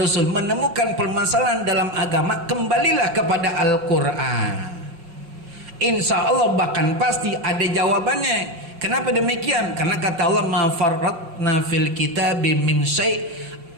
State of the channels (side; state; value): left; late; 5.4 ms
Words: menemukan permasalahan dalam agama, kembalilah kepada Al-Quran. Insya Allah bahkan pasti ada jawabannya. Kenapa demikian? Karena kata Allah, ma farratna fil kitabi min syai',